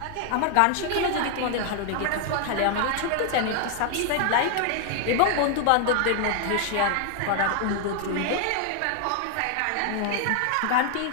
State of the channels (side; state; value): both; different; correlation 0.00